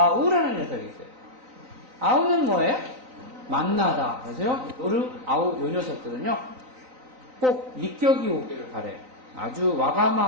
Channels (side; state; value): left; late; 3.9 ms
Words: 녀석이 있어요. 아우는 뭐예요? 만나다. 그래서요, 노루, 아우 요 녀석들은요 꼭 니격이 오기를 바래요. 아주